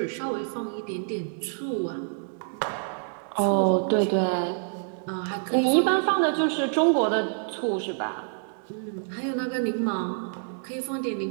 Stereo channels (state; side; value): silent; left; digital silence